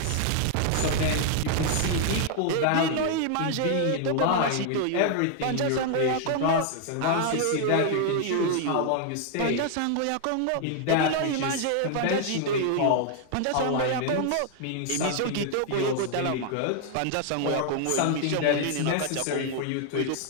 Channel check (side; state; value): both; different; correlation 0.00